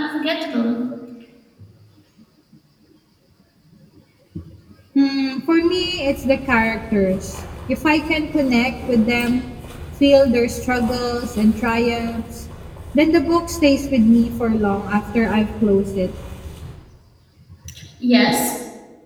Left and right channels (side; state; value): both; identical; correlation 1.00